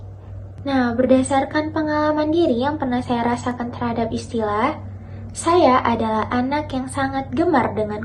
Nah, berdasarkan pengalaman diri yang pernah saya rasakan terhadap istilah, saya adalah anak yang sangat gemar dengan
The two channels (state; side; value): identical; both; correlation 1.00